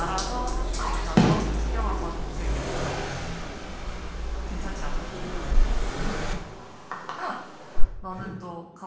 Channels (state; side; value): identical; both; correlation 1.00